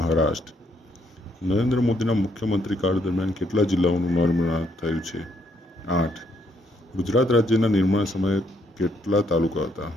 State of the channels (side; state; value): both; normal; correlation 0.71